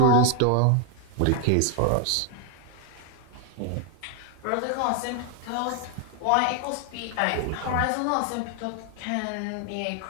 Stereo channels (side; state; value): both; different; correlation 0.00